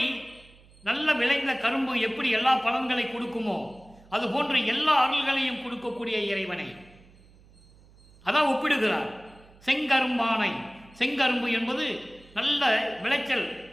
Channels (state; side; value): noise; right; hum, 26 dB below the sound